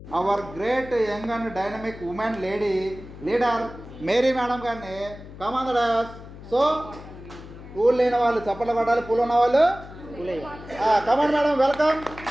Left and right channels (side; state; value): left; noise; hum, 15 dB below the sound